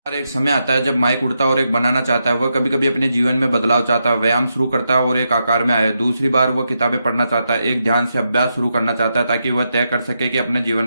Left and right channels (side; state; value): both; inverted; correlation -0.84